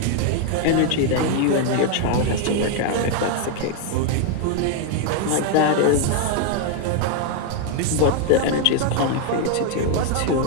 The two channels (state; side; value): different; both; correlation 0.00